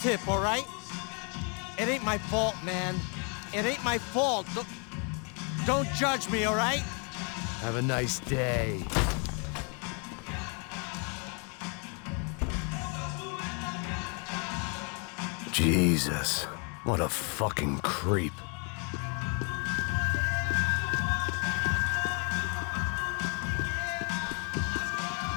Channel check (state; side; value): quieter; right; 36.7 dB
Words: all right? It ain't my fault, man. It ain't my fault. Don't judge me, all right? Have a nice day. Jesus, what a fucking creep.